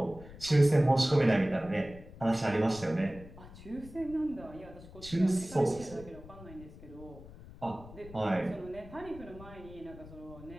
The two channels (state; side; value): noise; left; rumble, 17 dB below the sound